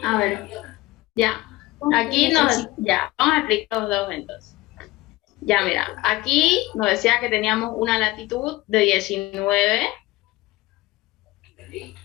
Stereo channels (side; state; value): right; quieter; 19.1 dB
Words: A ver. Ya. Aquí ya, vamos a explicar los dos entonces. Ya, mira, aquí nos decía que teníamos una latitud de 19, que